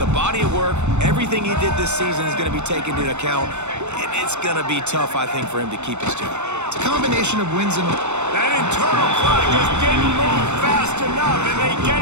body of work. Everything he did this season is going to be taken into account, and it's going to be tough, I think, for him to keep his job. It's a combination of wins and... That internal clock just didn't move fast enough, and they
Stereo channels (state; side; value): late; left; 0.83 ms